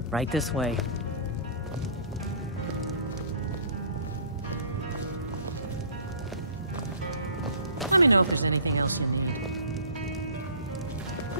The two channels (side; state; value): both; inverted; correlation -0.46